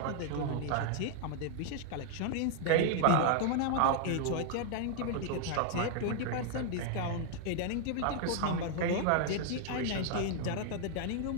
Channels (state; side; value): different; both; correlation 0.00